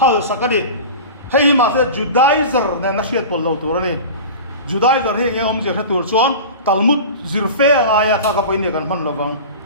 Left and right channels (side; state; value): both; inverted; correlation -0.33